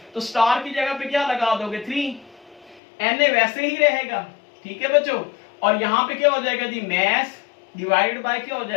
तो स्टार की जगह पे क्या लगा दोगे, 3। Na वैसे ही रहेगा। ठीक है बच्चों, और यहाँ पे क्या हो जाएगा जी, मैस डिवाइडेड बाय क्या हो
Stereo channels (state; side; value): drops out; right; at 2.8 s